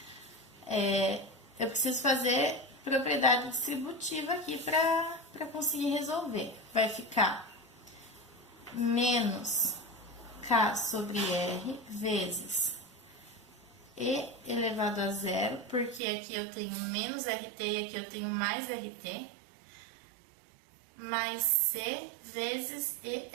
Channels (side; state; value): left; drops out; at 16.0 s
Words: eu preciso fazer propriedade distributiva aqui para conseguir resolver. Vai ficar menos K sobre R vezes E elevado a zero, porque aqui eu tenho menos RT e aqui eu tenho mais RT, mais C vezes